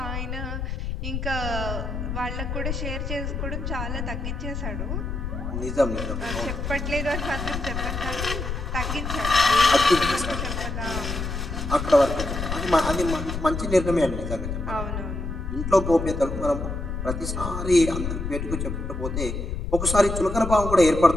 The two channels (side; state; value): left; noise; rumble, 4 dB below the sound